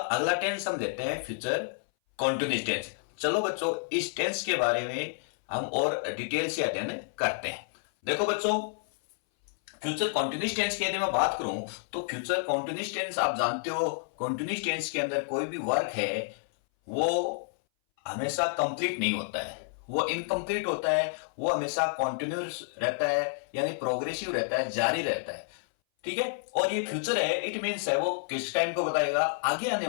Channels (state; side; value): silent; right; 58 dB below the other